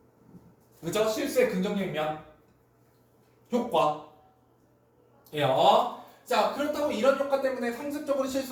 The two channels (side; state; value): both; identical; correlation 1.00